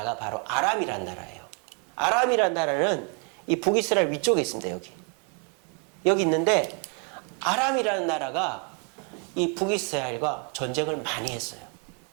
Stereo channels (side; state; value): left; quieter; 37.2 dB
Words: 바로 아람이란 나라예요. 아람이란 나라는 이 북이스라엘 위쪽에 있습니다. 여기 있는데 아람이라는 나라가 이 북이스라엘과 전쟁을 많이 했어요.